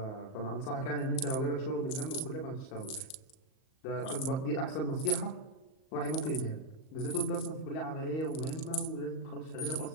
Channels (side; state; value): right; late; 38 ms